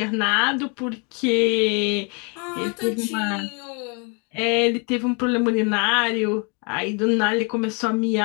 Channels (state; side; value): quieter; right; 34.5 dB